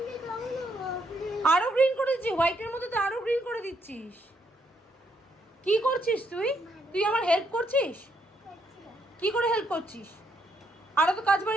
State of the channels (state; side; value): normal; both; correlation 0.74